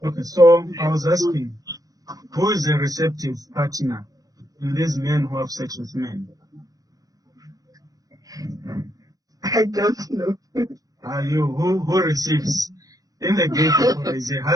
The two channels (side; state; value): left; late; 0.17 ms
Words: Okay, so I was asking, who is a receptive partner in these men who have sex with men? I don't know. Are you who receives? In the gay people, there is a